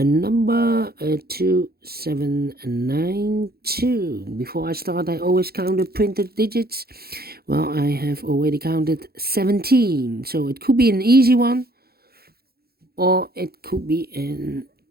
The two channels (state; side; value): late; left; 0.45 ms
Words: 2792. Before I start, I always count the printed digits. Well, I have already counted 17, so it could be an easy one or it could be